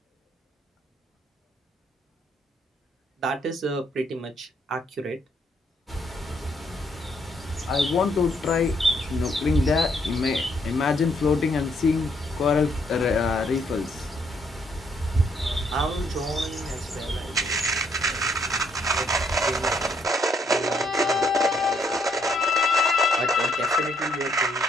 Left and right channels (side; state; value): both; normal; correlation 0.71